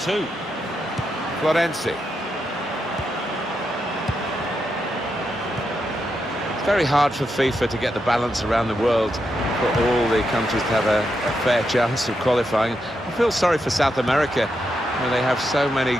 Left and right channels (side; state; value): both; normal; correlation 0.84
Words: Florenzi. It's very hard for FIFA to get the balance around the world for all the countries to have a fair chance of qualifying. I feel sorry for South America, where they have so many